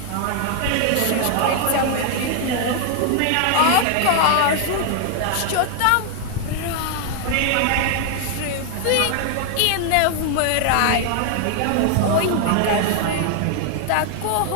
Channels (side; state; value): both; different; correlation 0.00